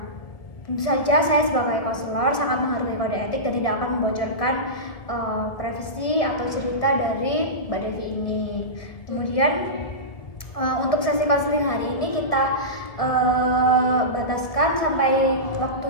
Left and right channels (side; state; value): right; late; 1.6 ms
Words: tentu saja saya sebagai konselor sangat menghargai kode etik dan tidak akan membocorkan privasi atau cerita dari Mbak Devi ini. Kemudian untuk sesi konseling hari ini kita bataskan sampai